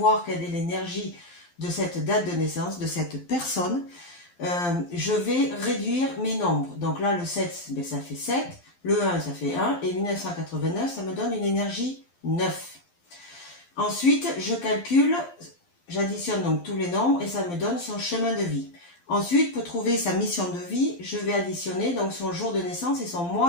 quelle est l'énergie de cette date de naissance, de cette personne, je vais réduire mes nombres. Donc là, le 7, ben, ça fait 7, le 1, ça fait 1, et 1989, ça me donne une énergie 9. Ensuite, je calcule, j'additionne donc tous les nombres, et ça me donne son chemin de vie. Ensuite, pour trouver sa mission de vie, je vais additionner donc son jour de naissance et son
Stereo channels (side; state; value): right; late; 12 ms